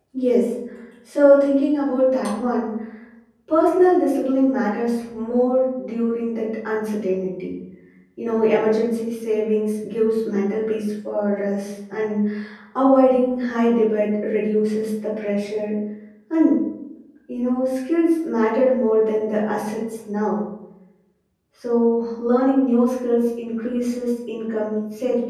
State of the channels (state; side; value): identical; both; correlation 1.00